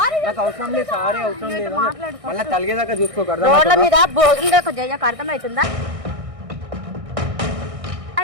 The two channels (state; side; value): late; left; 1.6 ms